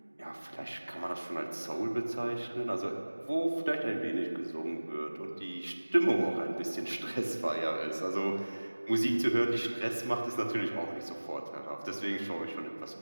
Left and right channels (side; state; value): both; inverted; correlation -1.00